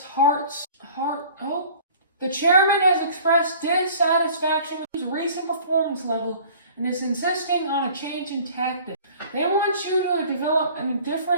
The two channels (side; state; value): both; inverted; correlation -0.48